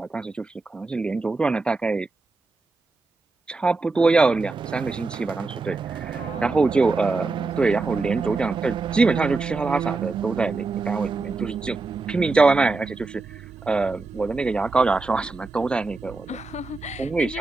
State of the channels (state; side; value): quieter; left; 3.7 dB